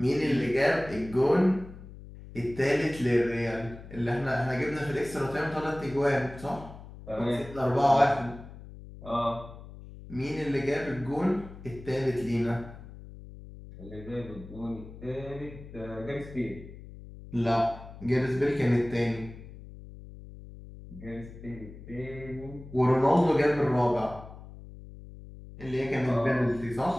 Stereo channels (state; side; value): noise; left; hum, 16 dB below the sound